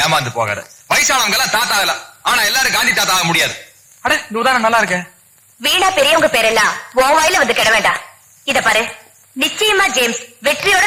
ஏமாந்து போகாத. வயசானவங்க எல்லாம் தாத்தா ஆகலாம், ஆனா எல்லாரும் காந்தி தாத்தா ஆக முடியாது. அட, இந்த உதாரணம் நல்லா இருக்கு. வீணா பெரியவங்க பேரெல்லாம் உன் வாயில வந்து கிட வேண்டாம். இத பாரு, நிச்சயமா ஜேம்ஸ் வெற்றியோட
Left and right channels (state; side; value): identical; both; correlation 1.00